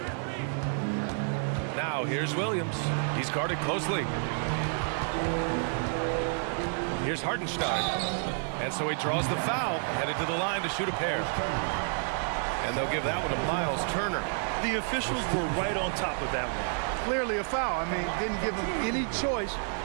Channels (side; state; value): left; silent; 57 dB below the other